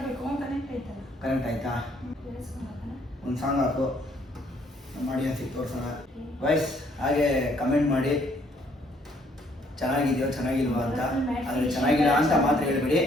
ಕನೆಕ್ಟ್ ಆಯ್ತಲ್ಲ? ಕರೆಂಟ್ ಆಯ್ತಾ? ಒಂದು ಸಾಂಗ್ ಹಾಕು, ಮಾಡಿ ಅನ್ಸಿಗೆ ತೋರ್ಸೋಣ. ವಾಯ್ಸ್ ಹಾಗೆ ಕಮೆಂಟ್ ಮಾಡಿ ಚೆನ್ನಾಗಿದೆಯೋ ಚೆನ್ನಾಗಿಲ್ವಾ ಅಂತ. ಆದರೆ ಚೆನ್ನಾಗಿಲ್ಲ ಅಂತ ಮಾತ್ರ ಹೇಳ್ಬೇಡಿ,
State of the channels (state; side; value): normal; both; correlation 0.65